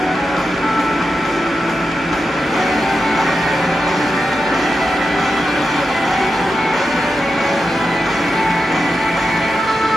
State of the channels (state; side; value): normal; both; correlation 0.88